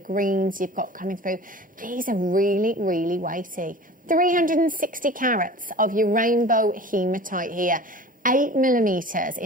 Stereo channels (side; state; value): both; normal; correlation 0.40